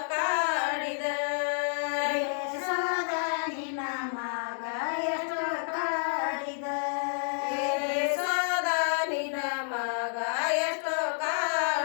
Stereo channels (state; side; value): silent; right; 58 dB below the other